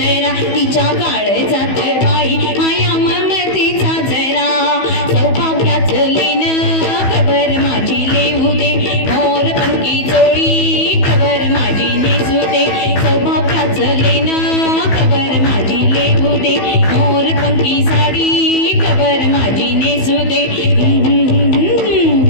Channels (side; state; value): right; late; 15 ms